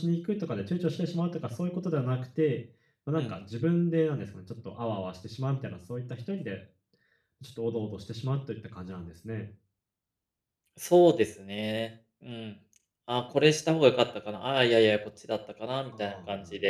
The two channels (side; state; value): both; identical; correlation 1.00